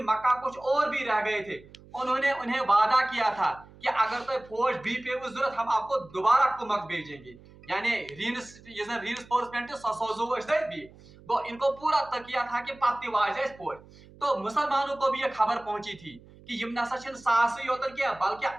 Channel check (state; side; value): noise; right; hum, 23 dB below the sound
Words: मक्का कुछ और भी रह गए थे, उन्होंने उन्हें वादा किया था कि अगर तो फौज भी पे जरूरत हम आपको दोबारा कुमक भेजेंगे, यानी रीइंफोर्समेंट ससोजो भी वो इनको पूरा तकिया था कि पत्ती वाज फौज। तो मुसलमानों को भी ये खबर पहुंची थी कि यम नसा सास योतन क्या बल्कि